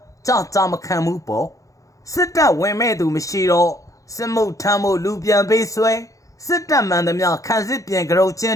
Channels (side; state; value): right; late; 0.16 ms